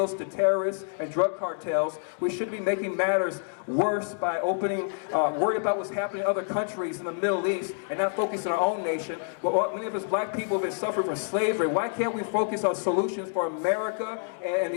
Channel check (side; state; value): right; silent; digital silence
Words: to terrorists and drug cartels. We should be making matters worse by worried about what's happening in other countries in the Middle East and not focus on our own nation. But many of us black people have been suffering from slavery. Why can't we focus on solutions for America and